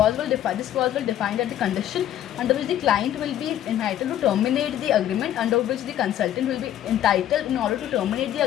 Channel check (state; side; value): quieter; right; 11.6 dB